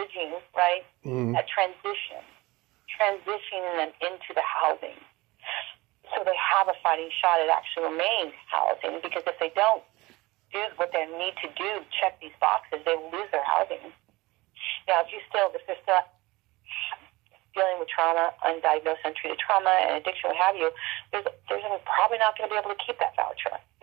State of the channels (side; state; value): left; quieter; 21.4 dB